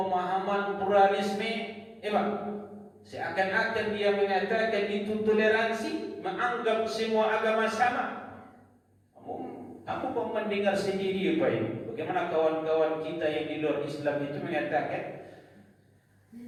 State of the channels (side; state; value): both; identical; correlation 1.00